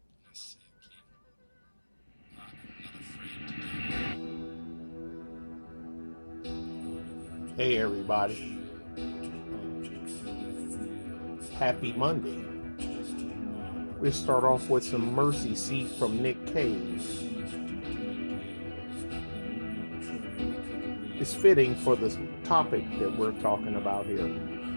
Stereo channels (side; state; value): both; inverted; correlation -1.00